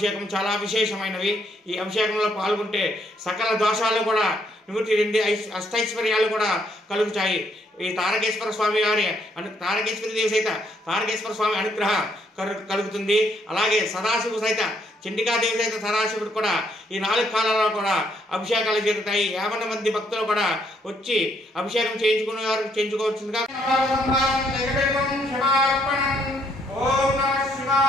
చాలా విశేషమైనవి. ఈ అభిషేకంలో పాల్గొంటే సకల దోషాలు కూడా నివృత్తి చెంది అష్టైశ్వర్యాలు కూడా కలుగుతాయి. ఈ తారకేశ్వర స్వామి వారి తారకేశ్వరి దేవి సైత తారకేశ్వర స్వామి అనుగ్రహం కలుగుతుంది. అలాగే సదాశివుడు సైత చండికాదేవి సైత సదాశివుడు కూడా ఈ 4 కాలాల్లో కూడా అభిషేకాలు జరుగుతాయి. 50 మంది భక్తులు కూడా వచ్చి అభిషేకం చేయించుకునే వారు చేయించుకోవచ్చుగా. ఓం నమః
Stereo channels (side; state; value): both; normal; correlation 0.71